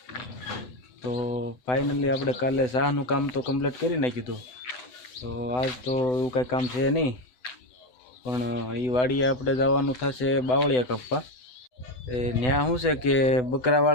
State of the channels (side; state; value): right; late; 7.9 ms